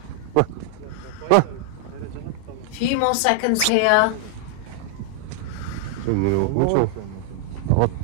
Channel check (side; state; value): both; different; correlation 0.00